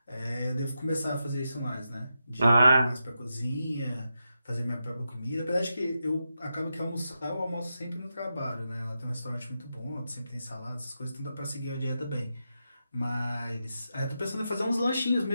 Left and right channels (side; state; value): both; inverted; correlation -0.88